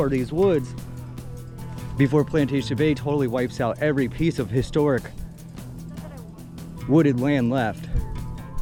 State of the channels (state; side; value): identical; both; correlation 1.00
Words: these woods before Plantation Bay totally wipes out every piece of historic wooded land left,